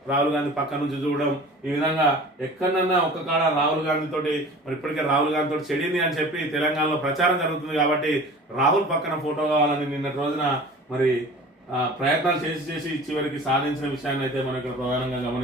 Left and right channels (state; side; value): normal; both; correlation 0.41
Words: రాహుల్ గాంధీ పక్క నుంచి చూడడం, ఈ విధంగా ఎక్కడన్నా ఒక్క కాడ రాహుల్ గాంధీ తోటి మరి ఇప్పటికే రాహుల్ గాంధీ తోటి చెడింది అని చెప్పి తెలంగాణలో ప్రచారం జరుగుతుంది. కాబట్టి రాహుల్ పక్కన ఫోటో కావాలని నిన్నటి రోజున మరి ప్రయత్నాలు చేసి చివరికి సాధించిన విషయాన్ని అయితే మనం ఇక్కడ ప్రధానంగా